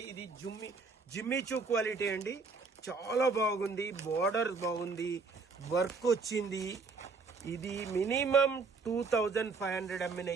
ఇది జిమ్మిచూ క్వాలిటీ అండి, చాలా బాగుంది. బార్డర్ బాగుంది, వర్క్ వచ్చింది. ఇది మినిమం 2500 అమ్మిన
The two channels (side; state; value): left; quieter; 4.5 dB